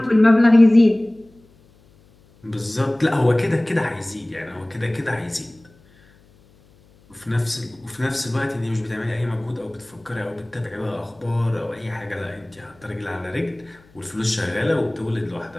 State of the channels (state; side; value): noise; left; hum, 29 dB below the sound